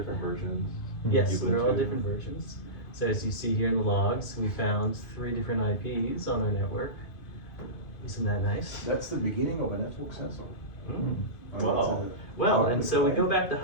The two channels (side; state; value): right; late; 2.2 ms